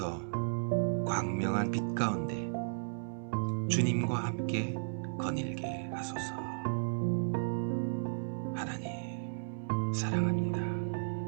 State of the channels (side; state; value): left; silent; 55 dB below the other